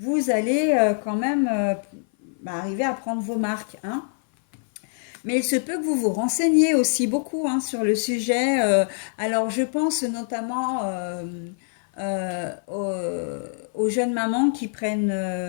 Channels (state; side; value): silent; right; 57 dB below the other